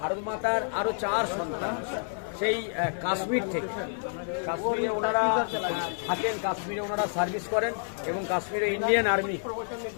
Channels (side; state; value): right; silent; 59 dB below the other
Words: মাতার আরো 4 সন্তান সেই কাশ্মীর থেকে। কাশ্মীরে ওনারা থাকেন, কাশ্মীরে ওনারা সার্ভিস করেন এবং কাশ্মীরে ইন্ডিয়ান আর্মি।